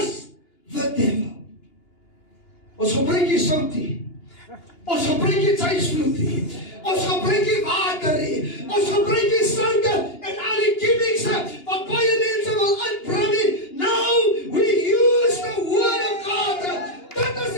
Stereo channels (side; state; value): right; late; 2.9 ms